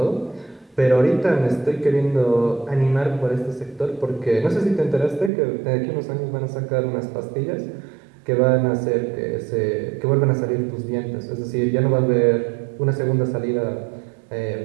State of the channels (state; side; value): drops out; left; at 5.3 s